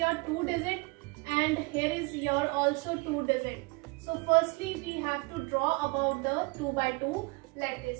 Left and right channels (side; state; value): left; quieter; 27.4 dB